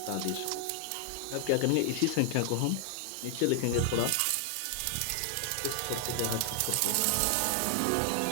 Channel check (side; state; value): both; different; correlation 0.00